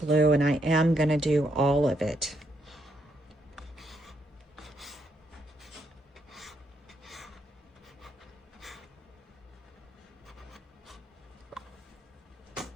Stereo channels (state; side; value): normal; both; correlation 0.77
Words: and I am going to do all of it.